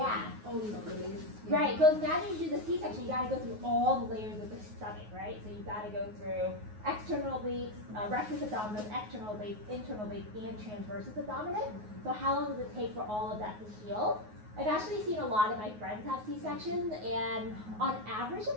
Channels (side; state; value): left; late; 9.4 ms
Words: Oh, the layers. of skin. Right, because now you do the C-section, you got to go through all the layers of the stomach, right? So you got to go through external obliques, rectus abdominis, external obliques, internal obliques, and transversus abdominis. So how long does it take for all of that to heal? I've actually seen a lot of my friends have C-sections, and on average